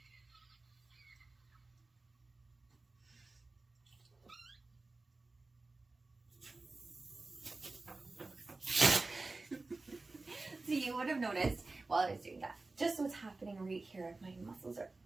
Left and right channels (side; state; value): left; quieter; 3.4 dB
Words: So you would have noticed while I was doing that, just what's happening right here. My muscles are